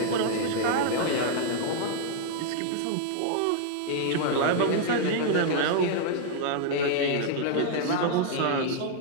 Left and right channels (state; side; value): different; both; correlation -0.01